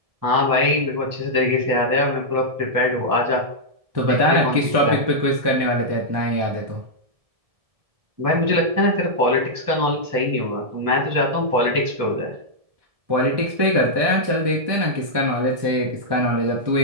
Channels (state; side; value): late; left; 1.7 ms